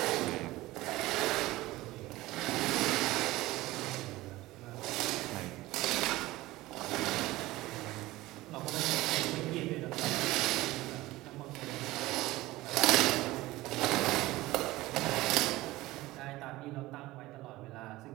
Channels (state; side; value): quieter; left; 18.3 dB